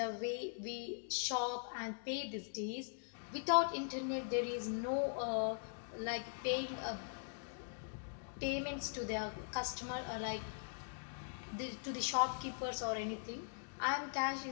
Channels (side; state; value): right; silent; digital silence